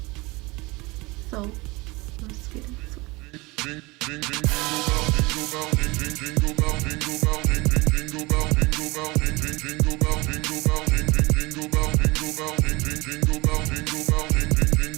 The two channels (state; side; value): quieter; left; 23.7 dB